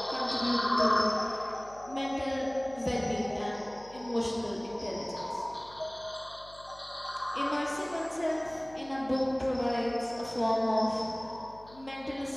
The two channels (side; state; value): left; noise; hum, 23 dB below the sound